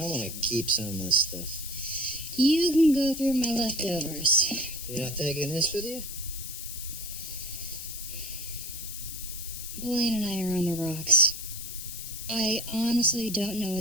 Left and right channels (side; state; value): left; noise; hiss, 9 dB below the sound